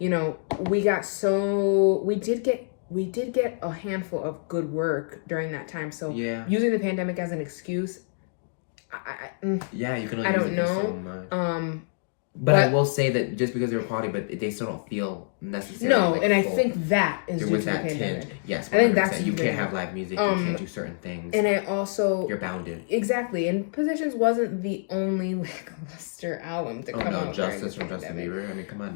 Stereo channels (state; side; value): silent; right; digital silence